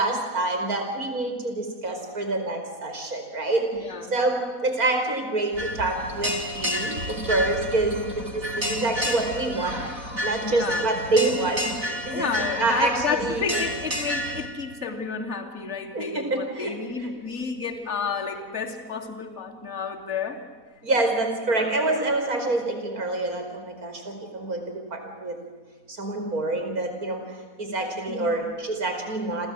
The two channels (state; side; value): late; left; 4.1 ms